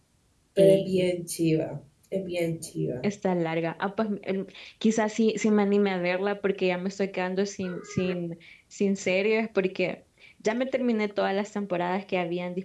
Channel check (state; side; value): identical; both; correlation 1.00